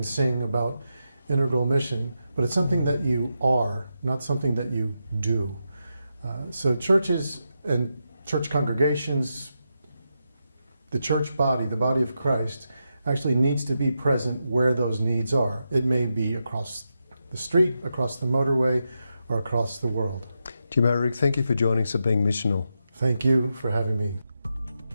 sing about integral mission, but it's something that you are, not something that you do. So churches and church congregations, the church body, the body of Christ, actually needs to be present where those needs are. It may be across the street, across the motorway, or across the world. Jim Oehrig, thank you for joining us at Being Missional. Thank you for having me.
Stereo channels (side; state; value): both; inverted; correlation -0.86